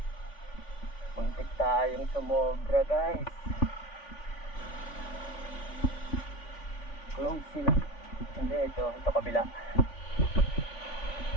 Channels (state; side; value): late; right; 3.5 ms